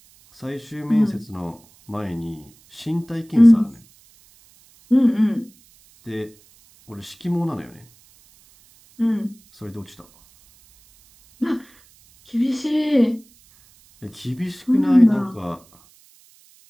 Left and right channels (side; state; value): right; noise; hiss, 29 dB below the sound